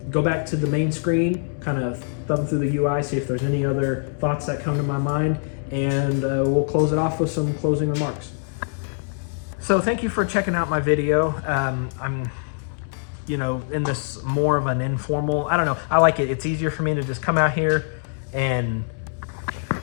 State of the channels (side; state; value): right; silent; digital silence